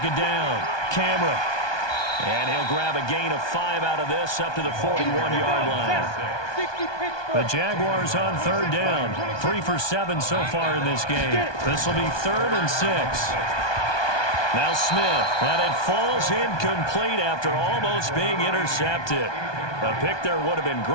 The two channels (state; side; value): late; right; 1.2 ms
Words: down, Cameron. And he'll grab a gain of 5 out of this up to the 41-yard line. The Jaguars on third down. 3 for 7 so far in this game. This will be 3rd and 6. Now Smith, and it falls incomplete after almost being intercepted. A pick there would have been